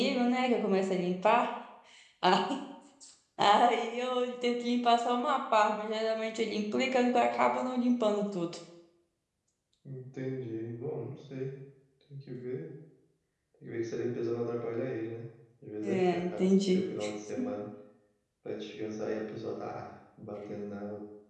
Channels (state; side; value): identical; both; correlation 1.00